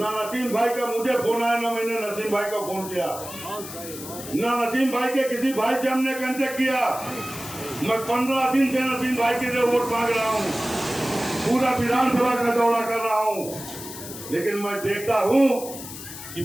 नसीम भाई का मुझे फोन आया, ना मैंने नसीम भाई का फोन किया, ना नसीम भाई के किसी भाई से हमने कांटेक्ट किया। मैं 15 दिन से नसीम भाई के लिए वोट मांग रहा हूँ, पूरा विधानसभा का दौरा कर रहा हूँ। लेकिन मैं देखता हूँ कि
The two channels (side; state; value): left; noise; hiss, 11 dB below the sound